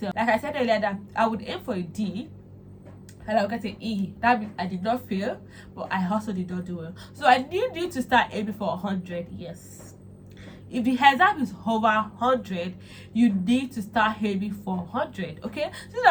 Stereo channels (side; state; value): both; identical; correlation 1.00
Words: Like I said earlier, that I would aim for a D and I would get an E. That means I did not fail, but I also did not do well. So I need you to start aiming for 100, yes. If the exam is over 100, you need to start aiming for 100, okay? So